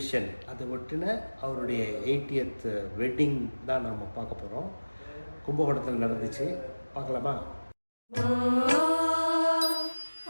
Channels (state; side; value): inverted; both; correlation -1.00